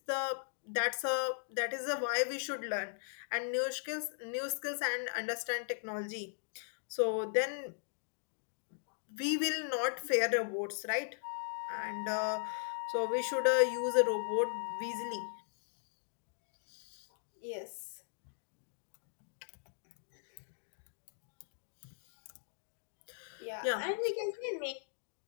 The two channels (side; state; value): right; silent; digital silence